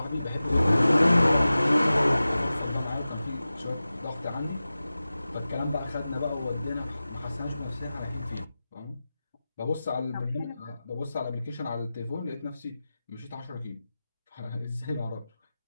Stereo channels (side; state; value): both; inverted; correlation -0.95